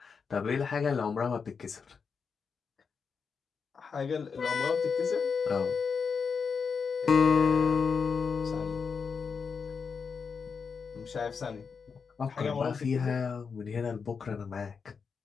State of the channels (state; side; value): quieter; right; 5.7 dB